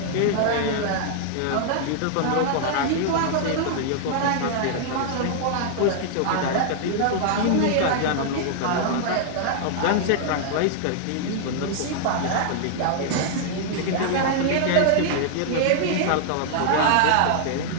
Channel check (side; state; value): both; different; correlation -0.01